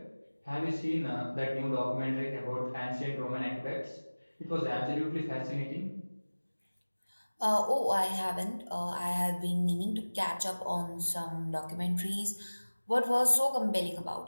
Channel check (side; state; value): both; inverted; correlation -1.00